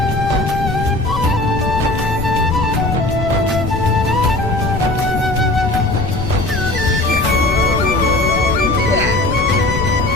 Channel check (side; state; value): left; noise; rumble, 5 dB below the sound